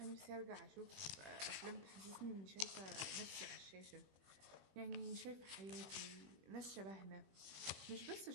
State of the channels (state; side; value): late; left; 21 ms